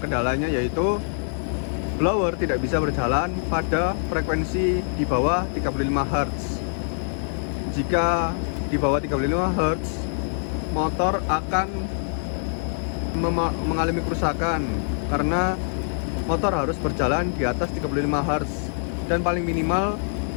yaitu blower tidak bisa berjalan pada frekuensi di bawah 35 Hz. Jika di bawah 35 Hz, motor akan mengalami kerusakan karena motor harus berjalan di atas 35 Hz dan paling minimal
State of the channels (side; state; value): right; silent; digital silence